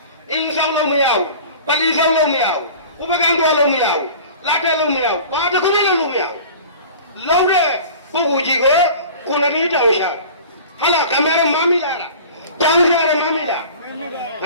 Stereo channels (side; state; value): both; inverted; correlation -0.40